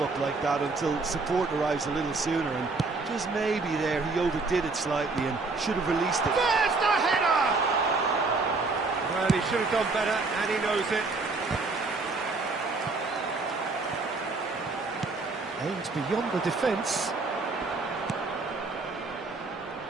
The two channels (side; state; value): left; quieter; 3.8 dB